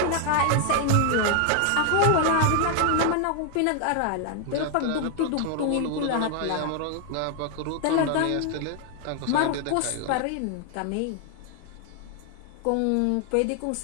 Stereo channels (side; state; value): both; different; correlation 0.00